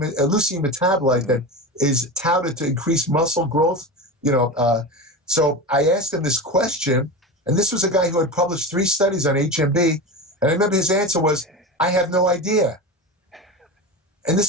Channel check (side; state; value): both; normal; correlation 0.25